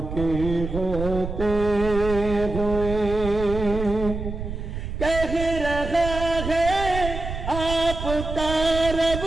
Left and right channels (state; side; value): noise; right; rumble, 6 dB below the sound